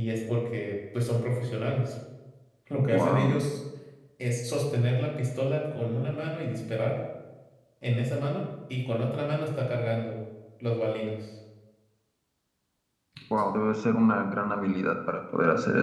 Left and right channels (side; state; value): both; identical; correlation 1.00